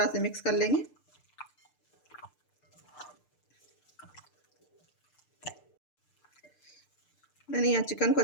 से मिक्स कर लेंगे। मैंने यहाँ चिकन को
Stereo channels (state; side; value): late; right; 6.7 ms